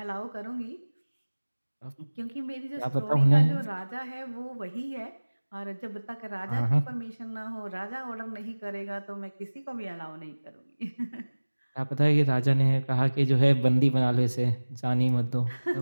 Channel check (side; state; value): both; inverted; correlation -1.00